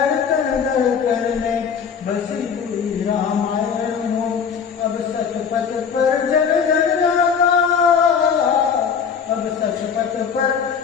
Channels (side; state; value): right; quieter; 6.7 dB